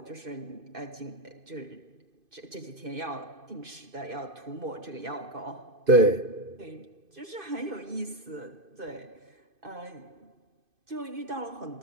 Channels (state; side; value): late; left; 2.5 ms